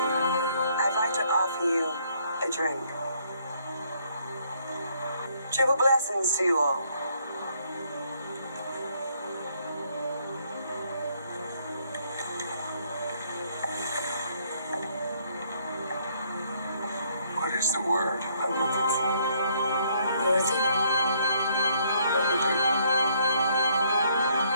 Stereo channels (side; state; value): both; inverted; correlation -0.68